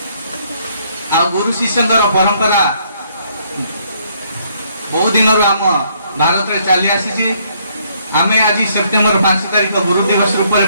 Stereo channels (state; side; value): inverted; both; correlation -0.68